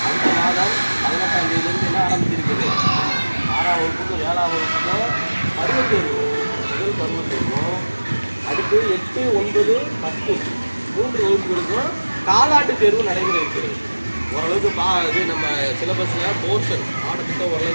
அடுத்த மாதம் 18ஆம் தேதியிலிருந்து என்ன ஆரம்பிச்சிருக்குது? 6ஆம் வகுப்புக்கும் 7ஆம் வகுப்புக்கும் பருவத் தேர்வு, முதல் பருவத் தேர்வும், அடுத்து 8, 9, 10 3 வகுப்புகளுக்கும் காலாண்டு தேர்வு நடைமுறை இருக்கிறது. ஓரளவுக்கு இது நம்ம சிலபஸில் போர்ஷன் பாடத்திட்டம்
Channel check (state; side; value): inverted; both; correlation -1.00